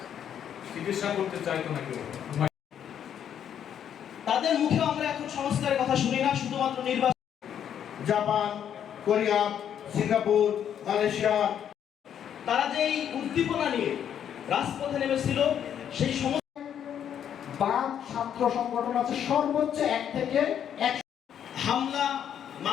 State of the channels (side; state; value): right; quieter; 9.2 dB